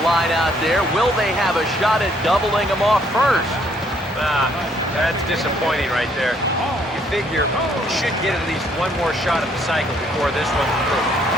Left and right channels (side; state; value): both; normal; correlation 0.67